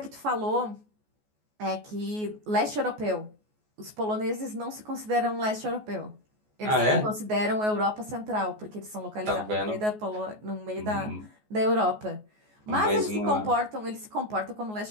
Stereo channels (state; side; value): late; left; 14 ms